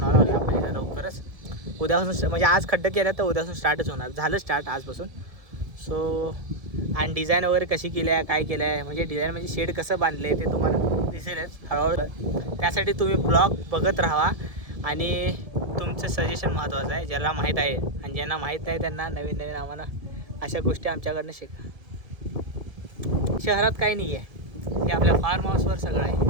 लागले आपण इथं लवकरच. उद्यापासून म्हणजे आज खड्डे केले तर उद्यापासून स्टार्टच होणार, झालं स्टार्ट आजपासून. सो आणि डिझाईन वगैरे कशी केली आहे, काय केलं आहे, म्हणजे डिझाईन म्हणजे शेड कसं बांधलं आहे ते तुम्हाला दिसेलच हळूहळू. त्यासाठी तुम्ही ब्लॉग बघत राहा आणि तुमचं सजेशन महत्त्वाचं आहे. ज्याला माहीत आहे आणि ज्यांना माहीत नाही त्यांना नवीन नवीन आम्हाला अशा गोष्टी आमच्याकडनं शिका. शहरात काही नाही आहे, हे आपल्या फार्म हाऊसवर सगळं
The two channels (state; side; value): late; left; 1.7 ms